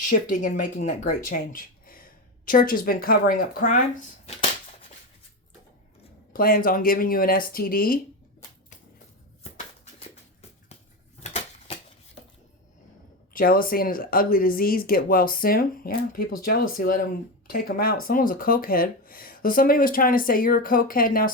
and making that great change. Church has been covering up crimes. Plans on giving you an STD. Jealousy and his ugly disease, get well soon. Yeah, people's jealousy, let them take them out. Someone's a cokehead. So somebody was trying to say you're a cokehead. Now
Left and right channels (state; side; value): normal; both; correlation 0.17